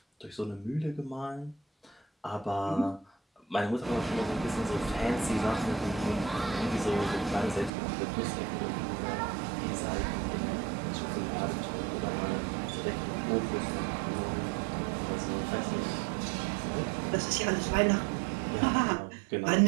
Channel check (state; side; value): drops out; left; at 7.7 s